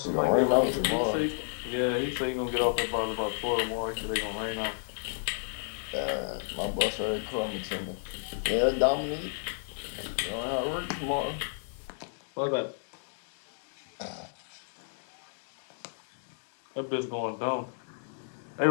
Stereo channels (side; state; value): right; silent; digital silence